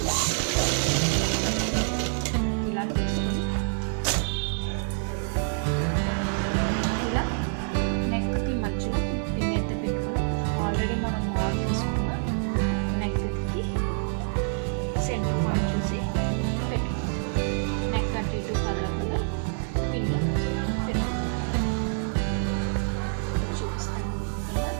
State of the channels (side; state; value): left; silent; 60 dB below the other